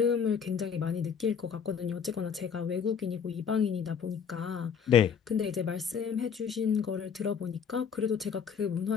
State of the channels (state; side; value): quieter; right; 7.0 dB